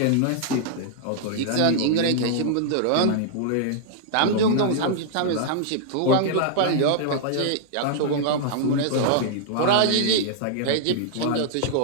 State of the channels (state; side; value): different; both; correlation -0.01